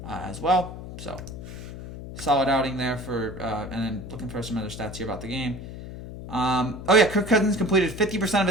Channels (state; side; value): noise; left; hum, 11 dB below the sound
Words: as well. So solid outing there for, and then looking for some other stats here about the game. Kirk Cousins completed 50% of